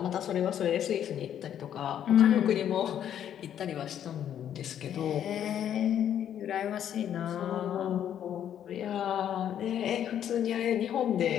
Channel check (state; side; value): quieter; right; 9.9 dB